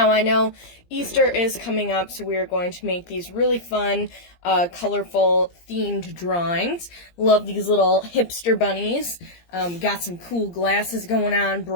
I know Easter is coming up, so we are going to make these really fun, colorful, themed drawings. Love these little hipster bunnies. Got some cool glasses going on,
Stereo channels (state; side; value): late; right; 17 ms